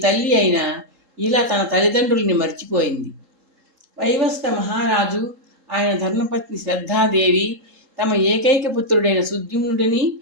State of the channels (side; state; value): left; late; 3.7 ms